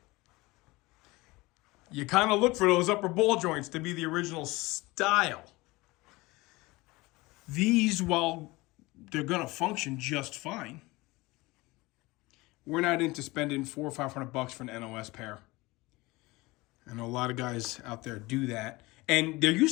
you kind of look for those upper ball joints to be the original style. These, while they're going to function just fine, we're not into spending $400 or $500 for an NOS pair. I know a lot of guys out there do that. And there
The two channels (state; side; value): quieter; right; 21.8 dB